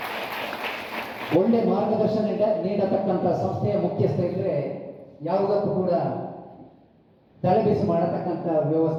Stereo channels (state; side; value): identical; both; correlation 1.00